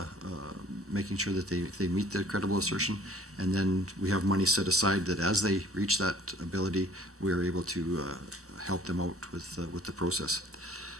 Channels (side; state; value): both; normal; correlation 0.54